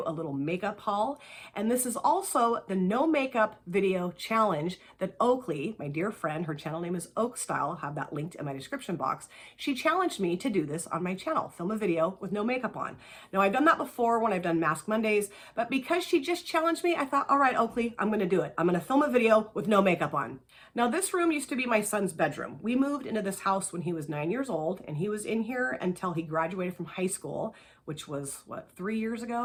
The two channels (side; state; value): both; identical; correlation 1.00